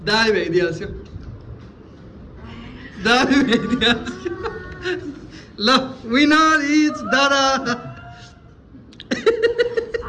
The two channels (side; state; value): both; identical; correlation 1.00